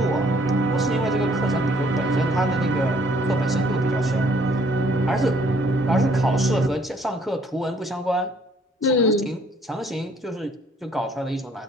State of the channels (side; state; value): both; normal; correlation 0.62